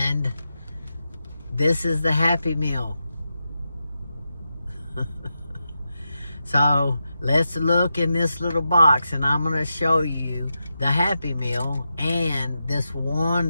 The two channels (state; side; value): inverted; both; correlation -0.88